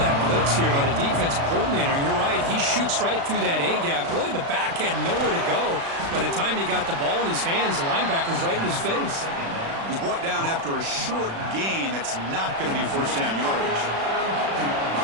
blitz here by the defensive coordinator. And you're right, he shoots right through that A-gap. Really, the back had nowhere to go. By the time he got the ball in his hands, the linebacker's right in his face. He's brought down after a short gain. That's not going to be first down yardage.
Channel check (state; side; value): late; left; 36 ms